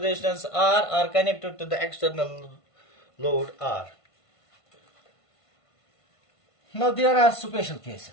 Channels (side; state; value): right; late; 1.5 ms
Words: R are connected to the external load R. Now there are special